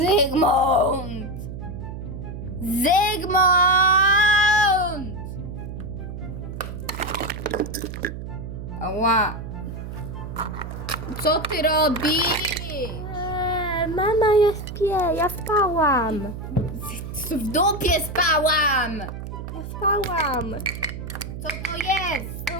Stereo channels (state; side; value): noise; right; hum, 8 dB below the sound